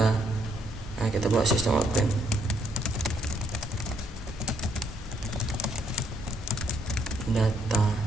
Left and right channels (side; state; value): both; normal; correlation 0.72